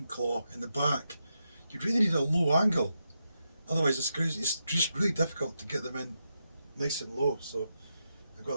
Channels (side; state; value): both; inverted; correlation -0.85